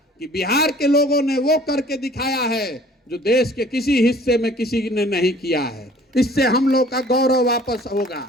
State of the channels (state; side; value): normal; both; correlation 0.52